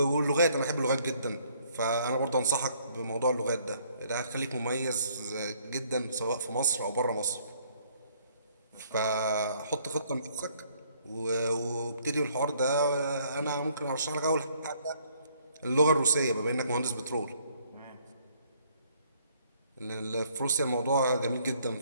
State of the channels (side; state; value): both; inverted; correlation -0.64